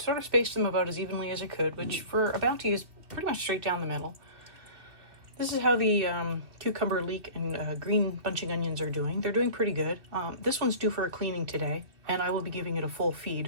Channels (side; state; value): left; late; 2.5 ms